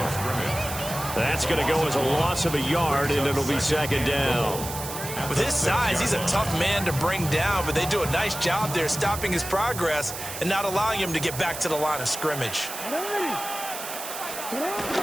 That's going to go as a loss of a yard, and it'll be second down. With his size, he's a tough man to bring down, but they do a nice job there stopping his progress and not allowing him to get back to the line of scrimmage. And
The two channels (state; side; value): noise; right; hiss, 8 dB below the sound